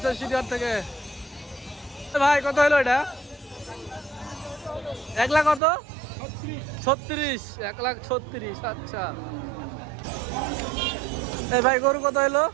সিটিহাট থেকে। ভাই কত হলো এটা? 1,00,000 কত? 36। 1,36,000। আচ্ছা। ভাই গরু কত হলো?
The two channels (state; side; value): drops out; left; at 5.6 s